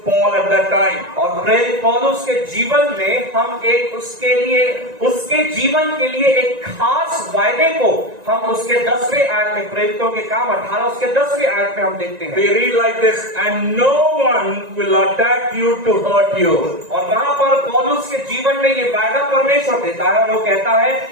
Paul at that time. और प्रेरित पौलुस के जीवन में हम एक उसके जीवन के लिए एक खास वायदे को हम उसके 10वें आयत में, प्रेरितों के काम 18 उसके 10वें आयत में हम देखते हैं। We read like this, and no one will attack you to hurt you. और वहां पर पौलुस के जीवन में ये वायदा परमेश्वर देता है और वो कहता है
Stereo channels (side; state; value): left; late; 1.9 ms